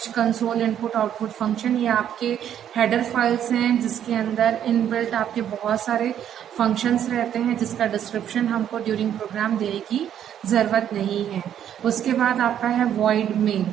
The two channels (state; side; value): quieter; left; 9.9 dB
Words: console input output function, ये आपके हेडर फाइल्स हैं जिसके अंदर इनबिल्ट आपके बहुत सारे फंक्शंस रहते हैं जिसका डिस्क्रिप्शन हमको ड्यूरिंग प्रोग्राम देने की ज़रूरत नहीं है। उसके बाद आपका है void main,